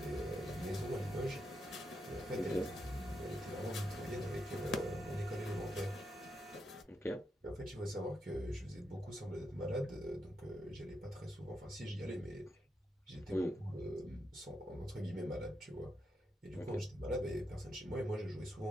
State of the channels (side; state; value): both; normal; correlation 0.83